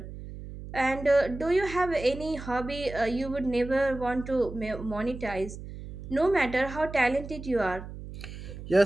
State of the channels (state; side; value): noise; right; hum, 11 dB below the sound